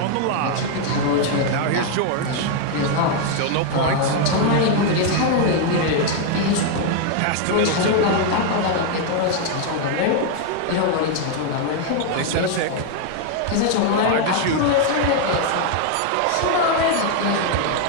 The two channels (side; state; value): both; different; correlation 0.00